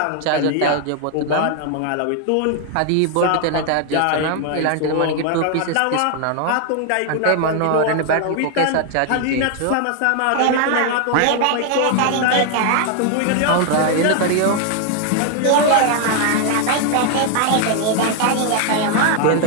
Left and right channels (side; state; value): both; different; correlation 0.00